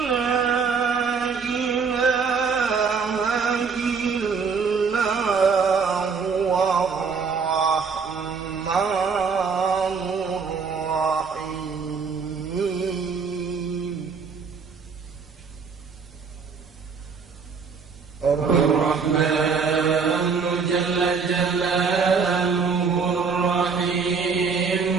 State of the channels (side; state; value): left; quieter; 5.5 dB